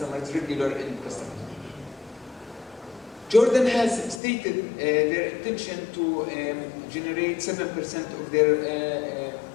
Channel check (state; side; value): drops out; right; at 4.2 s